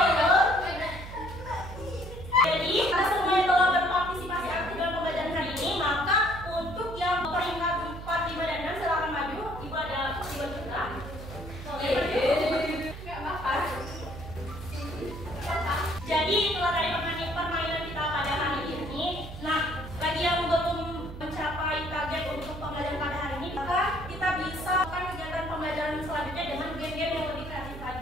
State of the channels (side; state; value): right; noise; hum, 11 dB below the sound